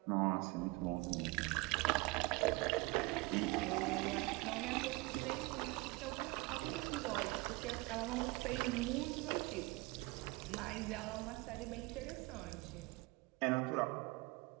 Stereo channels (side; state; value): left; quieter; 24.1 dB